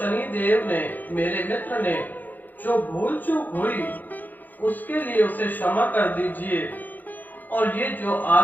देव ने, मेरे मित्र ने जो भूल चूक हुई उसके लिए उसे क्षमा कर दीजिए, और ये जो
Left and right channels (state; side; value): late; right; 0.085 ms